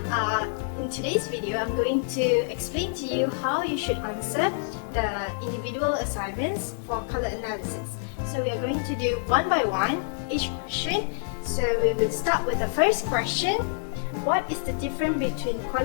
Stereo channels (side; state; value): right; silent; digital silence